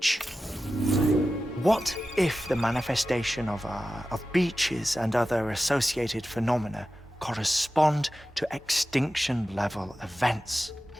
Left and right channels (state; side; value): normal; both; correlation 0.94